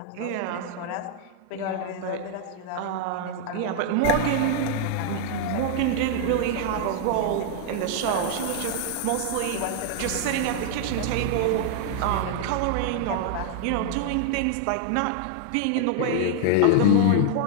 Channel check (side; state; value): both; different; correlation -0.01